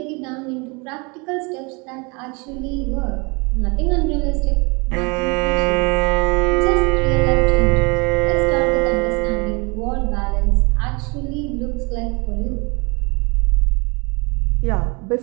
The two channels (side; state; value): left; quieter; 29.7 dB